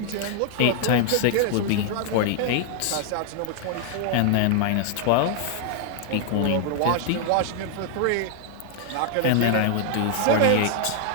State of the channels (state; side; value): different; both; correlation 0.00